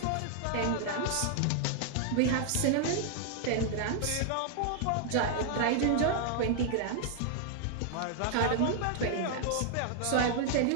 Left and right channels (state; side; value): different; both; correlation -0.01